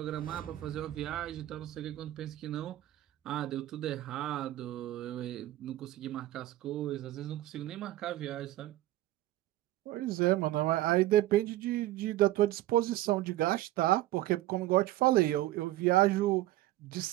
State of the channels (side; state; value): left; quieter; 15.5 dB